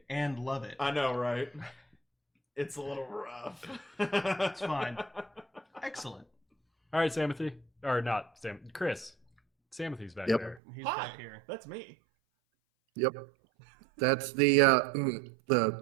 and love it. I know, right? It's a little rough. It's fine. Excellent. All right, Samothy. Or not Sam. Chris. Samothy's back Yep. there. He's Hi, back here. that's me. Yep. That's the.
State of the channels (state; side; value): drops out; left; at 10.6 s